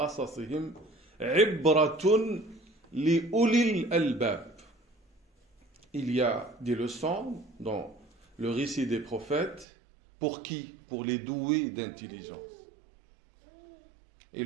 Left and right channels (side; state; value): left; drops out; at 9.7 s